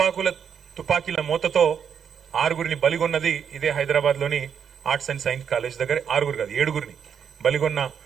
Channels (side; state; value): left; quieter; 7.6 dB